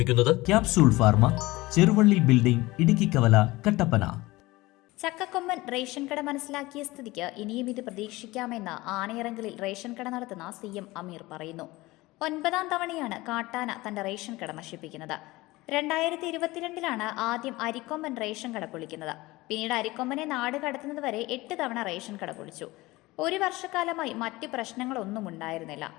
capsule pharma, Cheruvally building, Idukki കവല, കട്ടപ്പന. ചക്കക്കൊമ്പൻ റേഷൻ കട മനസ്സിലാക്കിയ സ്ഥിതിക്ക് ഇനിയും ഇത് പ്രതീക്ഷിക്കാമെന്ന് ആനയിറങ്കലിൽ റേഷൻ കട നടത്തുന്ന CM അമീർ പറയുന്നു. 9ാം തവണയാണ് കാട്ടാന തന്റെ റേഷൻ കട നശിപ്പിക്കുന്നത്. 2022 ആദ്യം അരിക്കൊമ്പൻ റേഷൻ കട പൊളിക്കുന്നത്. പിന്നീട് അരിക്കൊമ്പനെ നാട് കടത്തുന്നത് വരെ 8 തവണ റേഷൻ കട പൊളിച്ചു. ഒരു വർഷക്കാലമായി മറ്റ് പ്രശ്നങ്ങളൊന്നും ഉണ്ടായിരുന്നില്ല.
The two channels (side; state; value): right; quieter; 20.1 dB